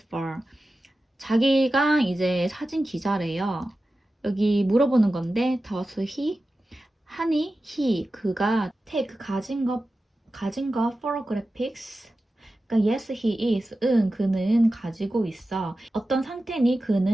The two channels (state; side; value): normal; both; correlation 0.94